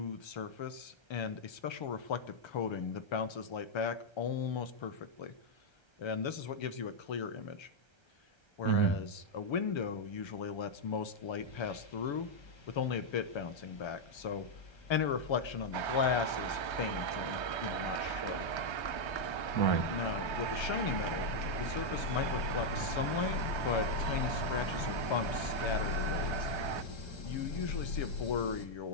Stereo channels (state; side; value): late; right; 1.3 ms